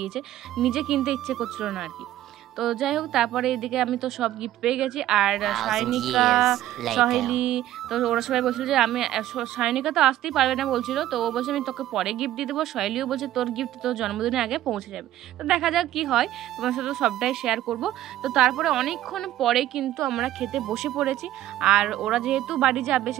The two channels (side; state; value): left; quieter; 13.5 dB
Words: নিজে কিনতে ইচ্ছে করছিল না আর কি। তো যাই হোক, তারপরে এদিকে আমি তো সব গিফট পেয়ে গেছি। আর সায়নিকা, সহেলি, তো ওরা সবাই বলছিল যে আমি, সায়নিকা তো আসতেই পারবে না বলছিল, তো ও বলছে আমি তোকে পরে গিফট দিয়ে দেবো। সহেলিও বলছে তোর গিফট তোর জন্মদিনের আগে পৌঁছে যাবে। তো দেখা যাক কি হয়, তোমার সাথে সবটাই শেয়ার করব। তো তারপরে অনেকক্ষণ পরে কিন্তু আমরা খেতে বসে পড়েছি। আর ওরা যেহেতু বাড়ি যাবে